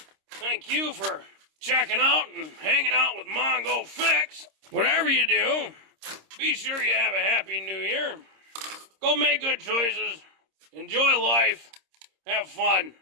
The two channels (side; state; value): left; late; 26 ms